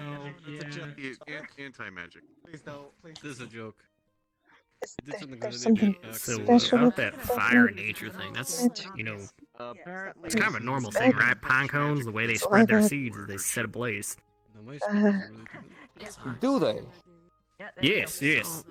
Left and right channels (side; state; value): both; identical; correlation 1.00